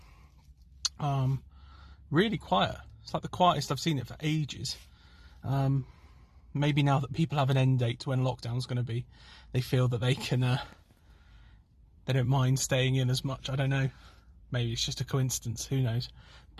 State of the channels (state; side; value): identical; both; correlation 1.00